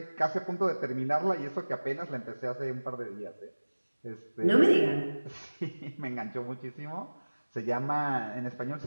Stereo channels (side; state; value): both; inverted; correlation -1.00